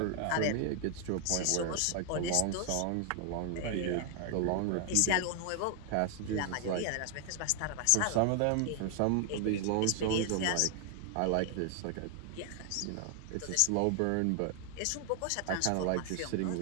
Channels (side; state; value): both; different; correlation 0.00